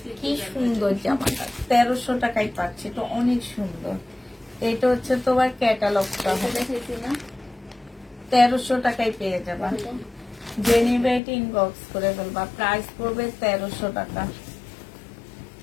কি সুন্দর জামাটা, 1300 টাকায় পাচ্ছি, তো অনেক সুন্দর। এটা হচ্ছে তোমার ক্যাটালগটা হবে, 1300 টাকায় পেয়ে যাবা। যে নিবে এটা ইনবক্স করে ফেলবা। প্রাইস পড়বে 1300 টাকা।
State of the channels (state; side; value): drops out; right; at 11.2 s